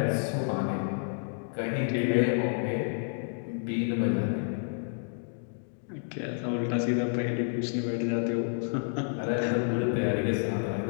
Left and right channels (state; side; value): silent; right; digital silence